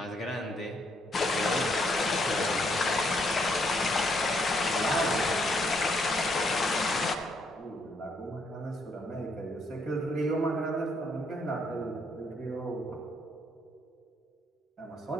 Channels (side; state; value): both; normal; correlation 0.72